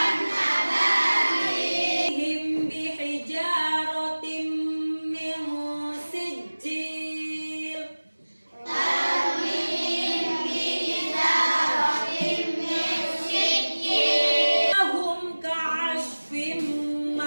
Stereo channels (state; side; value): inverted; both; correlation -1.00